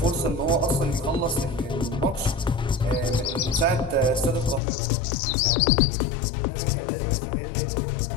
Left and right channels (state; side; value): drops out; right; at 4.6 s